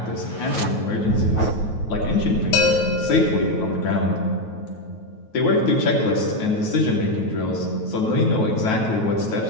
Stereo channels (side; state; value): right; late; 9.3 ms